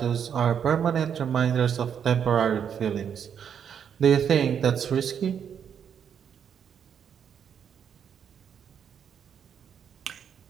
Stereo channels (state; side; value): quieter; left; 8.0 dB